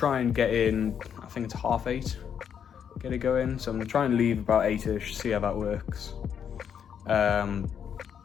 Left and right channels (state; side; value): quieter; right; 8.1 dB